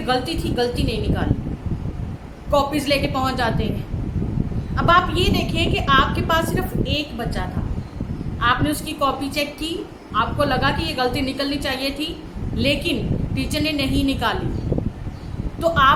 गलती थी, गलती नहीं निकाली, कॉपीज लेके पहुंच जाते हैं। अब आप ये देखें कि आपके पास सिर्फ एक बच्चा था, आपने उसकी कॉपी चेक की, आपको लगा कि ये गलती निकलनी चाहिए थी, लेकिन टीचर ने नहीं निकाली, तो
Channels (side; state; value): both; identical; correlation 1.00